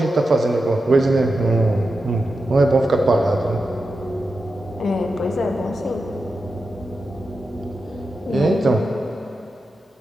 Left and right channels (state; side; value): normal; both; correlation 0.90